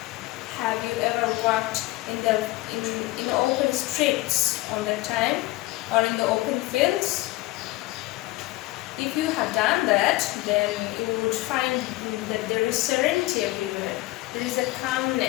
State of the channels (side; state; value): right; quieter; 19.8 dB